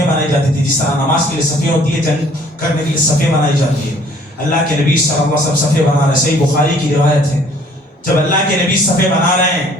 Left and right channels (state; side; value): normal; both; correlation 0.57